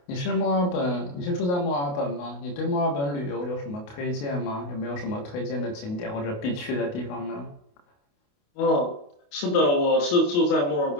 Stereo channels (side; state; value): right; late; 28 ms